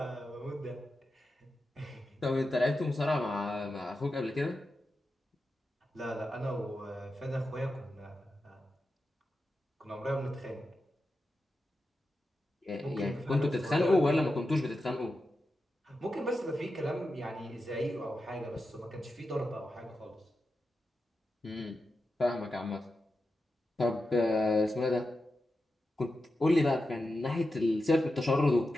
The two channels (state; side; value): normal; both; correlation 0.90